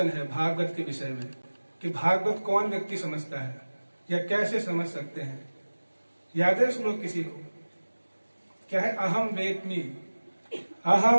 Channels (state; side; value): inverted; both; correlation -1.00